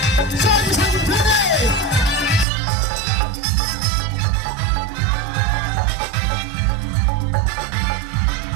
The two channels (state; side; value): drops out; left; at 2.5 s